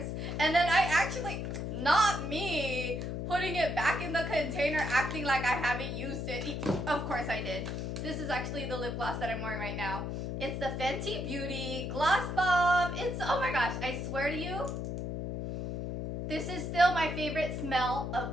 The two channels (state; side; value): noise; left; hum, 4 dB below the sound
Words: And then I actually, not me, putting it back in the container, acting like I haven't used it. Of course I did. This is actually the lip gloss that I'm wearing right now. It's the Fenty Beauty Gloss Bomb. It's, oh my gosh, I swear to you, this is still my favorite smell of